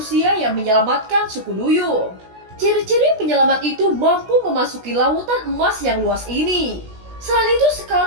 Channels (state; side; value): late; left; 16 ms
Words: yang menyelamatkan suku Duyung. Ciri-ciri penyelamat itu mampu memasuki lautan emas yang luas ini. Selain itu